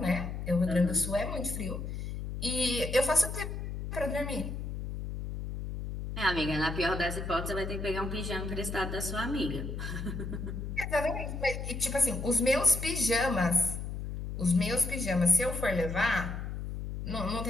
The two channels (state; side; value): noise; left; hum, 6 dB below the sound